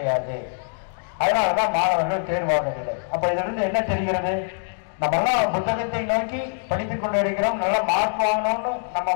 அதனாலதான் மாணவர்கள் தேர்வாகவில்லை. அப்ப இதுல இருந்து என்ன தெரிகிறது? நம்ம எல்லாம் புத்தகத்தை நோக்கி படித்துக் கொண்டு இருக்கிறோம், நல்ல மார்க் வாங்கணும்னு நம்ம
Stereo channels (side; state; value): right; silent; digital silence